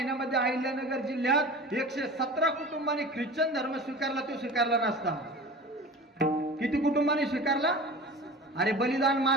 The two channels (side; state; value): both; normal; correlation 0.36